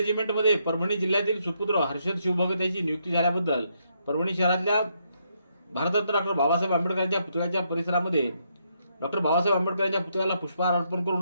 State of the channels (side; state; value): both; inverted; correlation -0.76